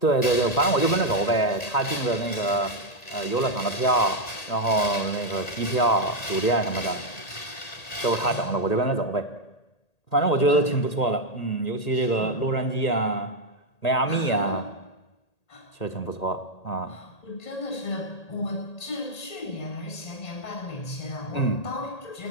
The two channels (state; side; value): late; right; 1.8 ms